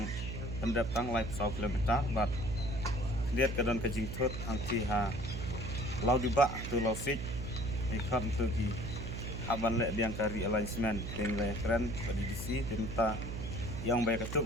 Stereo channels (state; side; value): noise; right; hum, 5 dB below the sound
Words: pendatang live 1 kilometer bat lihat ke dan ke jingtut hangti ha lau dibak tu lau sik ikan tu ki haban lek diang kari alignment dengan keren badi disi tenta yang baik itu